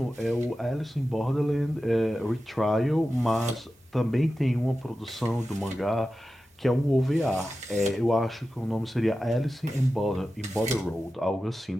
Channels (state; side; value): normal; both; correlation 0.93